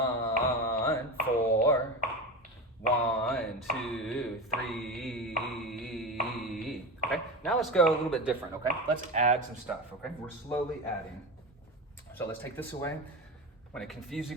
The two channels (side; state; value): both; normal; correlation 0.23